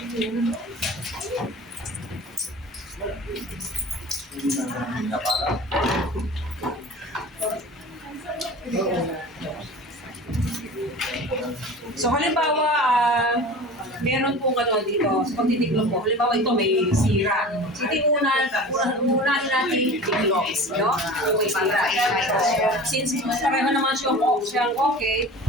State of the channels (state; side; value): normal; both; correlation 0.37